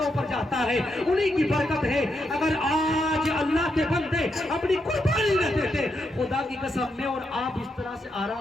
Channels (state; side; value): normal; both; correlation 0.82